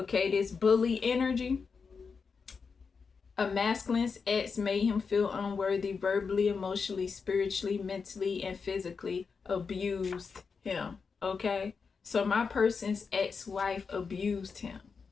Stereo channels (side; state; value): right; quieter; 5.3 dB